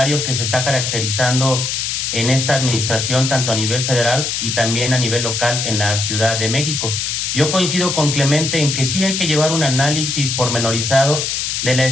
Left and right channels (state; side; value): noise; left; hiss, 1 dB below the sound